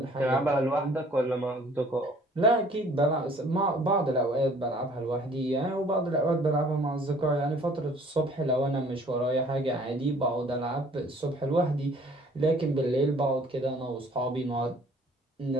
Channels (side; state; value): both; normal; correlation 0.55